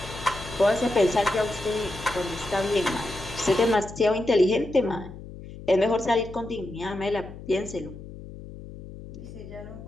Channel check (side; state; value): left; noise; hum, 14 dB below the sound